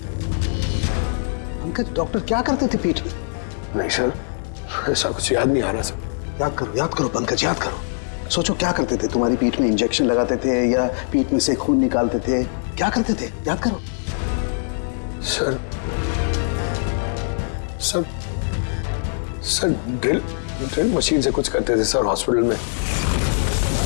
पंकज, डॉक्टर क्या करते थे पीठ में? नहीं सर, ऐसा कुछ याद नहीं आ रहा सर। याद करो पंकज, याद करो। सोचो क्या करते थे? तुम्हारी पीठ में इंजेक्शन लगाते थे या पीठ में से खून निकालते थे? क्या करते थे? याद करो। Sir sir sir drill machine से कुछ करते थे सर हॉस्पिटल में।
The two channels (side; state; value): right; silent; digital silence